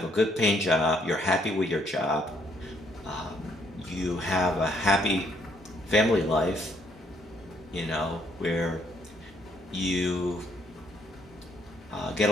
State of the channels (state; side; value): normal; both; correlation 0.68